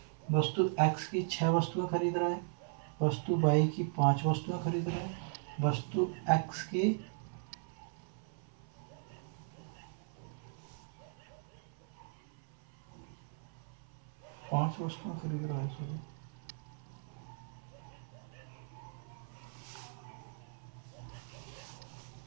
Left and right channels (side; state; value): left; silent; 52 dB below the other